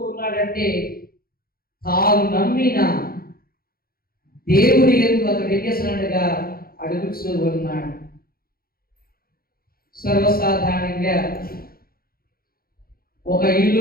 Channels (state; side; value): late; right; 0.43 ms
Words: ఉన్నాడంటే తాను నమ్మిన దేవుని యందు అతడు ఏం చేస్తున్నట్టుగా అడుగుతూ ఉన్నాడు. సర్వసాధారణంగా ఒక